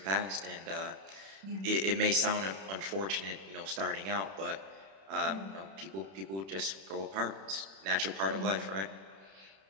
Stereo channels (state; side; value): late; left; 31 ms